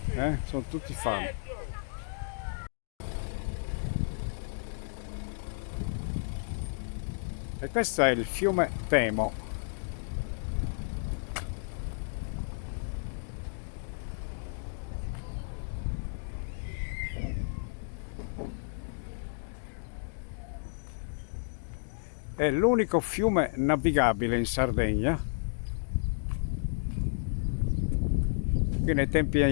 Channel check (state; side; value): silent; right; digital silence